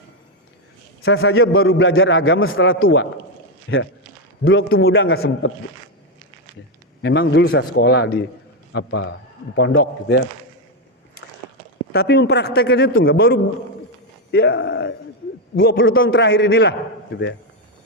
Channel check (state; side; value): normal; both; correlation 0.06